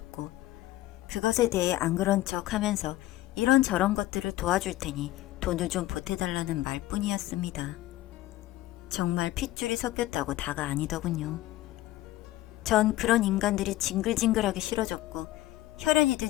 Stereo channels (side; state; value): right; quieter; 16.0 dB